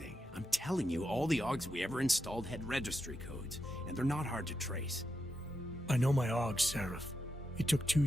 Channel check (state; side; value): normal; both; correlation 0.86